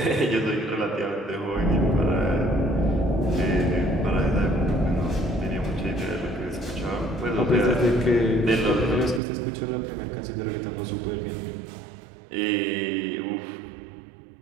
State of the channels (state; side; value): drops out; left; at 9.2 s